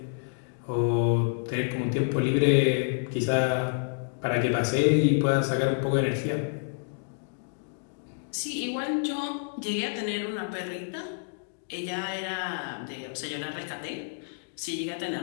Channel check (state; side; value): silent; right; digital silence